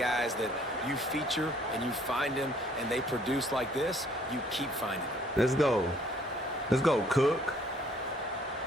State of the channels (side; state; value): both; normal; correlation 0.60